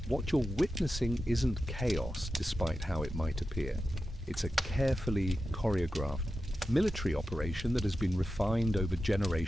What you're witnessing isn't chaos, despite how it might appear. It's a carefully choreographed military operation that has been refined over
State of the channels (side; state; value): both; normal; correlation 0.91